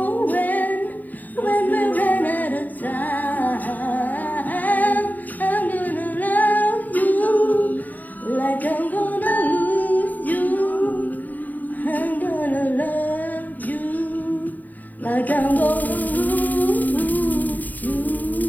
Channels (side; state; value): right; late; 0.083 ms